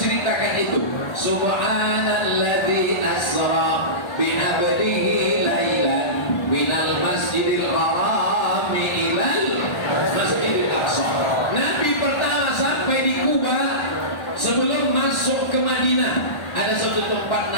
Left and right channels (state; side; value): late; right; 1.3 ms